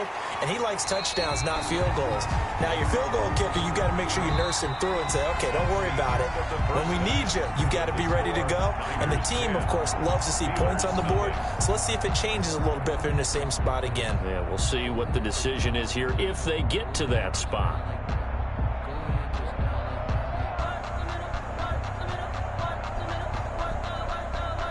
and he likes touchdowns, not field goals. Now, your field goal kicker, you got to make sure you nurse him through and say, okay, don't worry about it. When we need you, you got to be ready to go. And the team, of course, loves to see points on the board, so let's see if it changes a little bit if they're in the same spot again. Yeah, we'll see what the decision is here if they get to that spot.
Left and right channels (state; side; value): identical; both; correlation 1.00